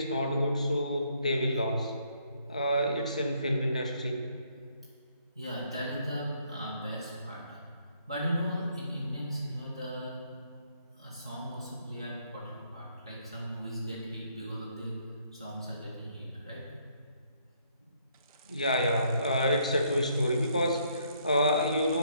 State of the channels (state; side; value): inverted; both; correlation -0.69